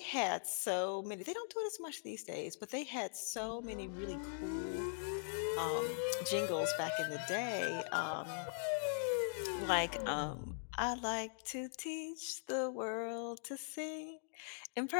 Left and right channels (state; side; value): silent; right; digital silence